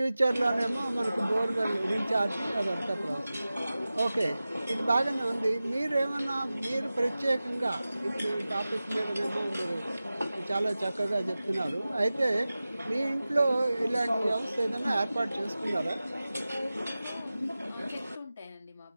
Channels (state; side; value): inverted; both; correlation -0.96